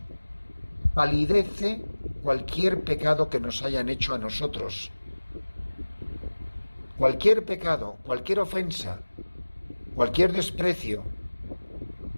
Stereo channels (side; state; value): both; inverted; correlation -1.00